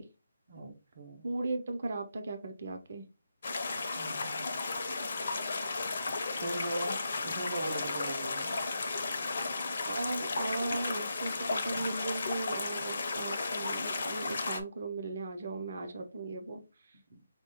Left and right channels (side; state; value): both; inverted; correlation -0.84